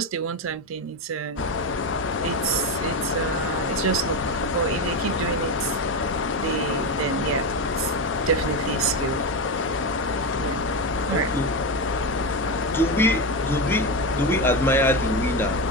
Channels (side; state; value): both; normal; correlation 0.15